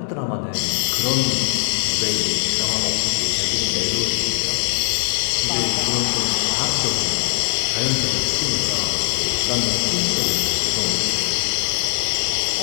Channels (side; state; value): right; silent; 62 dB below the other